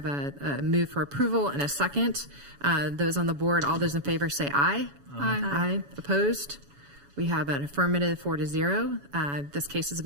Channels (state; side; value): late; left; 7.1 ms